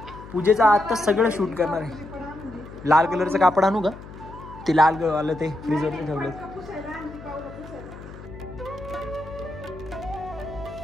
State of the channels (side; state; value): left; noise; hum, 15 dB below the sound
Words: पूजेचा आता सगळं शूट करणार आहे. लाल कलरचं कापड आणू का, ते लाल आलं ते फ्रीजवरती ठेवलं.